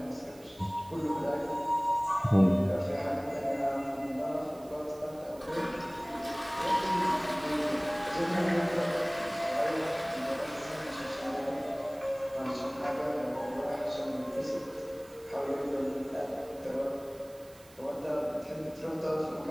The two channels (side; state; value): right; noise; hiss, 24 dB below the sound